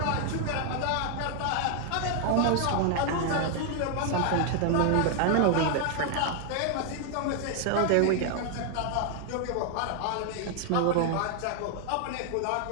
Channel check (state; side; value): different; both; correlation 0.00